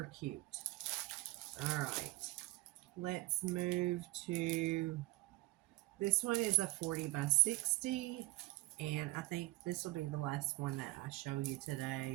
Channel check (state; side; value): quieter; left; 20.3 dB